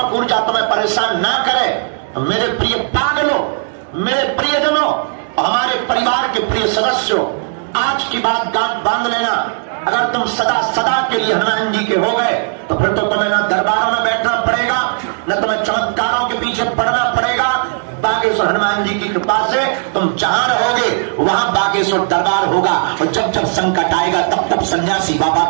ऊर्जा तुम्हें परेशान ना करे, तो मेरे प्रिय पागलों, मेरे प्रियजनों, हमारे परिवार के प्रिय सदस्यों, आज की बात गांठ बांध लेना। अगर तुम सदा सदा के लिए हनुमान जी के हो गए, तो फिर तो तुम्हें ना दरबारों में बैठना पड़ेगा, न तुम्हें चमत्कारों के पीछे पड़ना पड़ेगा। बागेश्वर हनुमान जी की कृपा से तुम जहां रहोगे वहां बागेश्वर दरबार होगा। और जब जब संकट आएगा, तब तब सन्यासी बाबा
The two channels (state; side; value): silent; left; 65 dB below the other